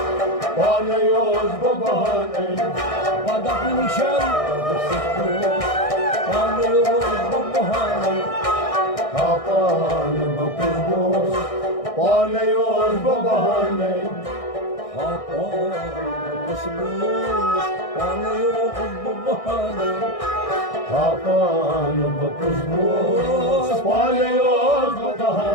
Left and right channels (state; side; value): late; right; 1.6 ms